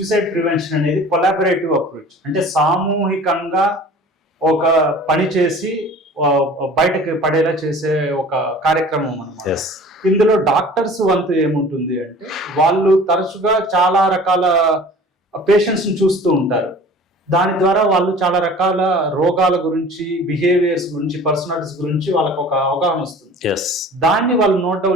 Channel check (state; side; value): normal; both; correlation 0.44